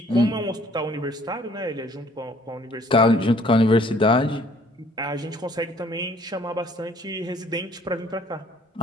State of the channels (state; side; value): normal; both; correlation 0.58